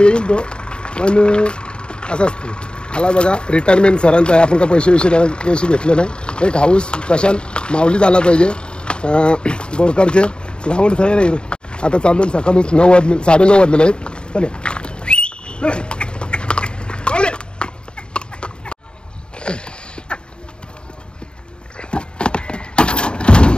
तो पण असं असते आला बघा रिटायरमेंट सरांचा आहे आपण का पैसे घेतले नाही एक हाऊस प्रशांत माऊलीच आला पाहिजे बोरकरचे ग्राउंड तयार आहे आता चालून सकाळूच 9:30 वाजलेले आहेत चले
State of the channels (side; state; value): right; late; 0.051 ms